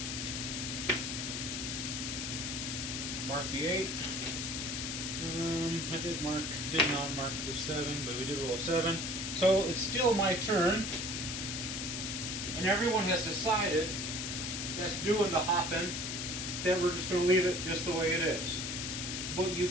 Mark the 8. I did not mark the 7, but we did roll a 7. So it's still my turn, and everyone has decided that's doing the hopping, that we're just going to leave it just the way it is. But you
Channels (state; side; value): noise; left; hiss, 3 dB below the sound